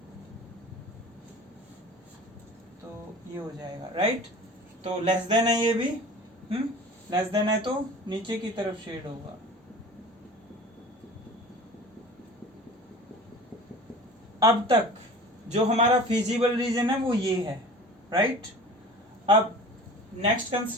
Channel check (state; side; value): normal; both; correlation 0.40